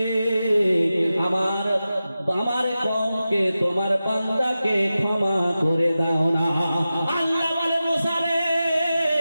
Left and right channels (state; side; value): inverted; both; correlation -0.93